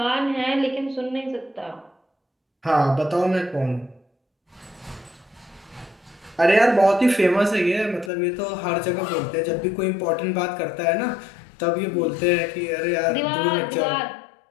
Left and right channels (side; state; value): right; drops out; at 8.1 s